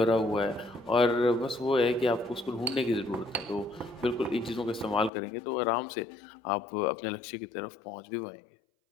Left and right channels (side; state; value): right; drops out; at 5.1 s